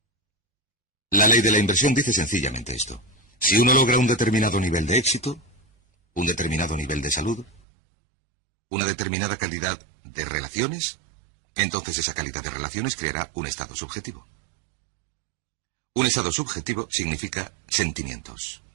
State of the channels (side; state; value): left; drops out; at 7.6 s